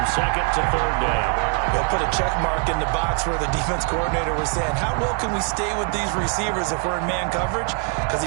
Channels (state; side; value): quieter; left; 37.2 dB